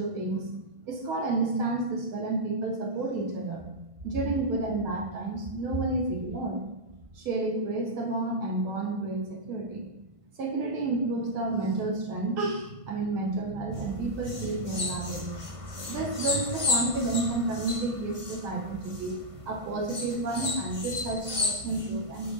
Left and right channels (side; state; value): left; late; 1.5 ms